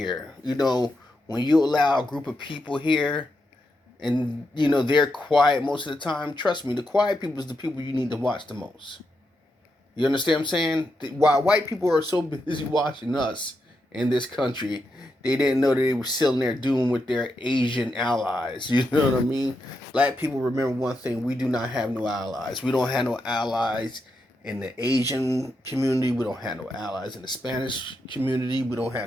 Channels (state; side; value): normal; both; correlation 0.84